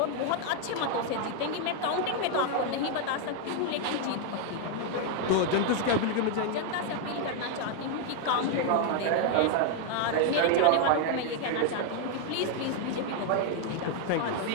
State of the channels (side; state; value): both; different; correlation 0.01